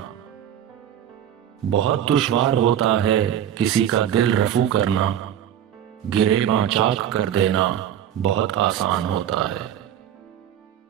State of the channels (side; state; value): left; quieter; 10.3 dB